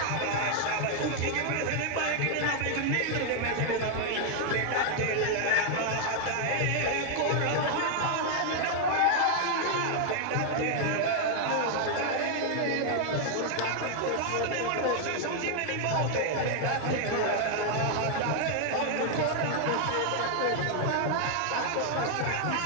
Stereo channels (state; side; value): different; both; correlation 0.00